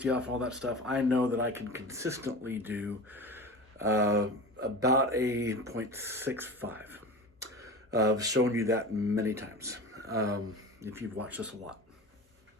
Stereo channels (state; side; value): normal; both; correlation 0.32